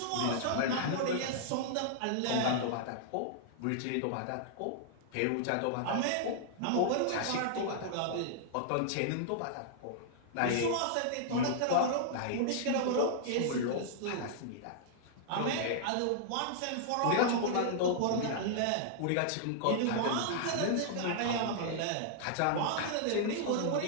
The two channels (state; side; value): different; both; correlation -0.01